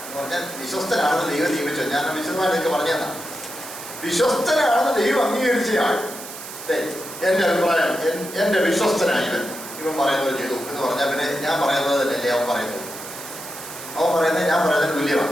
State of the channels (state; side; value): noise; right; hiss, 12 dB below the sound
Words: എന്ന് പറഞ്ഞാൽ വിശ്വസ്തനാണെന്ന് ദൈവം നിയമിച്ചോ? ഞാൻ വിശദമായിട്ട് എനിക്ക് പറഞ്ഞു തന്നാ. വിശ്വസ്തനാണെന്ന് ദൈവം അംഗീകരിച്ചയാൾ എൻ്റെ അഭിപ്രായം, എൻ്റെ വിശ്വസ്തനായി ഇവൻ പറയുന്നത് ചെയ്തു എന്ന് പറഞ്ഞാൽ പിന്നെ ഞാൻ പറയുന്നത് തന്നെയല്ലേ അവൻ പറയുന്നത്? അവൻ പറയുന്നത് ഞാൻ പറയുന്നതിന്